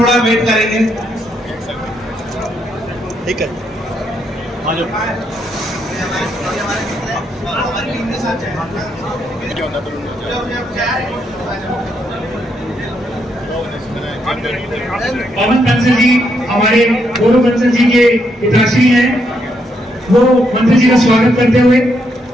वेट करेंगे। ठीक है पवन बंसल जी हमारे गौरव बंसल जी के पिताश्री हैं, वो मंत्री जी का स्वागत करते हुए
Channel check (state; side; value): normal; both; correlation 0.77